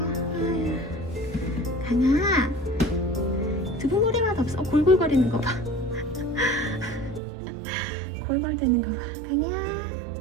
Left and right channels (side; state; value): left; drops out; at 7.2 s